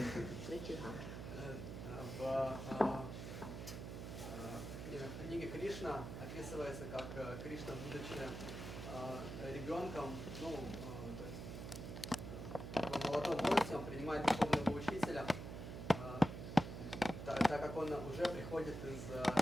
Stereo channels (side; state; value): right; noise; hum, 7 dB below the sound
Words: В книге Кришна описывается, как Кришна, будучи ребенком, молодом возрасте, он принимает духовного учителя, так как он уже приходит из